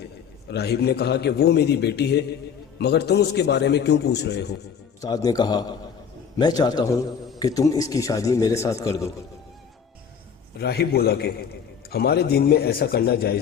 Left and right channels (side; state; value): right; quieter; 7.1 dB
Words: راہب نے کہا کہ وہ میری بیٹی ہے، مگر تم اس کے بارے میں کیوں پوچھ رہے ہو؟ استاد نے کہا میں چاہتا ہوں کہ تم اس کی شادی میرے ساتھ کر دو۔ راہب بولا کہ ہمارے دین میں ایسا کرنا